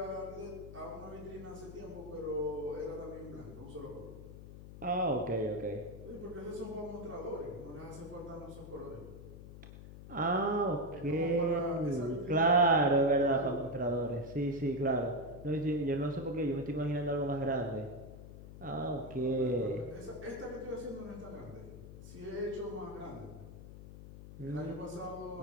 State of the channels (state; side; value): noise; left; hum, 14 dB below the sound